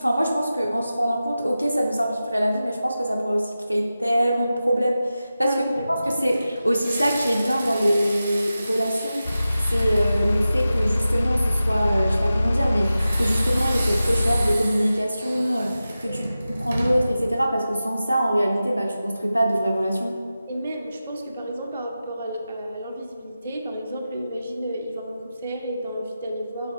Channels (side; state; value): both; inverted; correlation -0.93